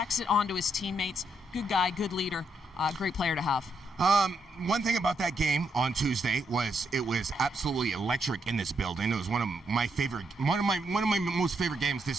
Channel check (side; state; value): both; normal; correlation 0.78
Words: it onto his teammates. Good guy, good leader, great player to have. One thing about that game on Tuesday was it was absolutely electric in this building. It was one of my most favorite games